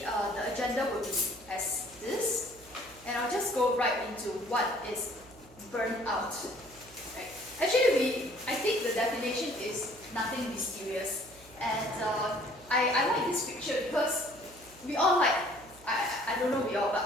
the agenda will be as this, and I'll just go right into what is burnout. Right. Actually, I think the definition is nothing mysterious, and I like this picture because we all like, I don't know we all, but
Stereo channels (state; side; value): noise; right; hum, 23 dB below the sound